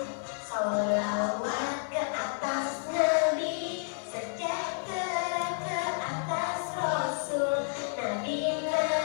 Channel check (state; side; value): silent; right; 57 dB below the other